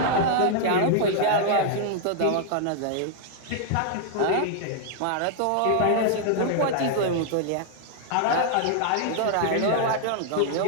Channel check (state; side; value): different; both; correlation -0.01